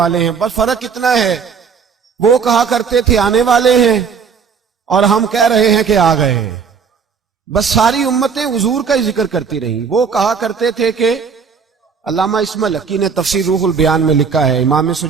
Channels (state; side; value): quieter; left; 6.1 dB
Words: ہیں۔ بس فرق اتنا ہے، وہ کہا کرتے تھے آنے والے ہیں اور ہم کہہ رہے ہیں کہ آ گئے ہیں۔ بس ساری امتیں حضور کا ہی ذکر کرتی رہیں۔ وہ کہا کرتے تھے کہ علامہ اسماعیل حقی نے تفسیر روح البیان میں لکھا ہے، امام